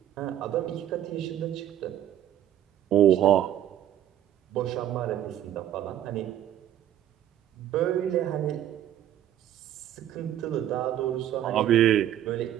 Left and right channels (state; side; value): quieter; left; 11.5 dB